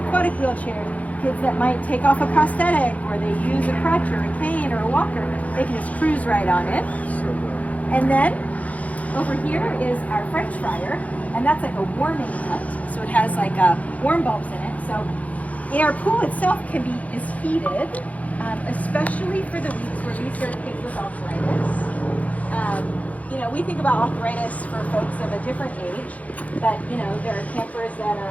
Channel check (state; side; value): late; right; 0.070 ms